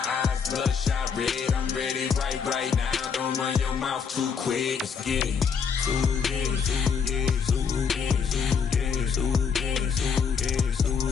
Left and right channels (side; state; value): right; quieter; 6.3 dB